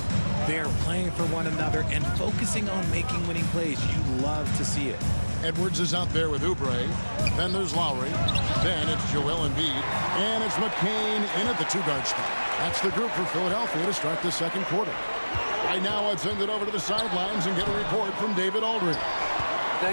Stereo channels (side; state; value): both; inverted; correlation -1.00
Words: They're playing for one another and focusing on making winning plays. You love to see it. Edwards is out there with Oubre. Then there's Lowry. Then it's Joel Embiid. And it's McCain in at the 2-guard spot. That's the group for Philadelphia to start the second quarter. Right now, I'd send it over to the sidelines and get a report from David Aldridge.